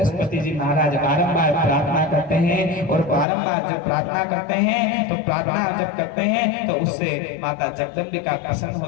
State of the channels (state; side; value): drops out; right; at 3.2 s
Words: जी महाराज बारंबार प्रार्थना करते हैं। और बारंबार जब प्रार्थना करते हैं तो प्रार्थना जब करते हैं तो उससे माता जगदम्बिका प्रसन्न